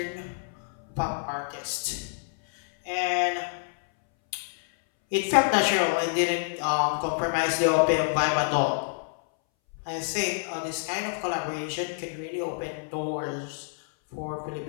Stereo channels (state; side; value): silent; right; 60 dB below the other